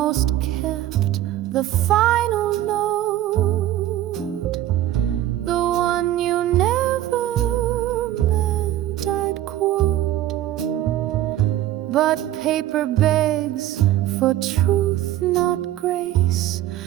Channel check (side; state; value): left; quieter; 13.5 dB